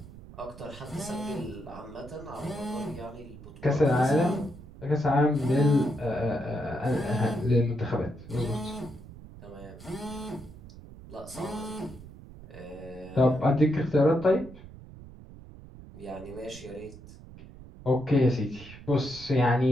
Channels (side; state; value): right; noise; rumble, 17 dB below the sound